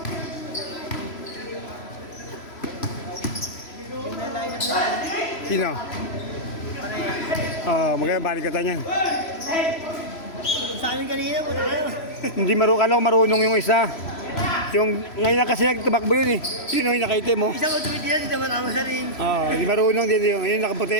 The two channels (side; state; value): right; late; 3.0 ms